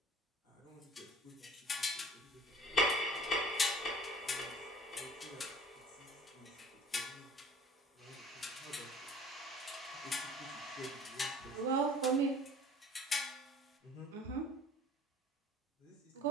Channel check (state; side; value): normal; both; correlation 0.48